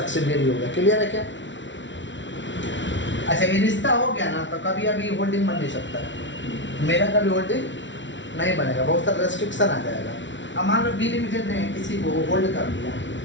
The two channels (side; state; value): right; late; 0.54 ms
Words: हो गया। क्लियर है क्या? अच्छा, ये रिश्ता हो गया ना, तो कभी अभी होल्डिंग बन नहीं सकता है, मेरा कभी होल्डिंग नहीं बनेगा, बहुत सारा रेस्ट्रिक्शन आ जाएगा। अब मान लो बी लिमिटेड ने किसी को होल्ड कर दिया,